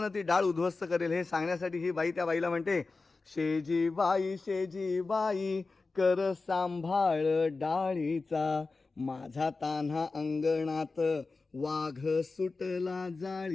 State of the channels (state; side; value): quieter; right; 3.9 dB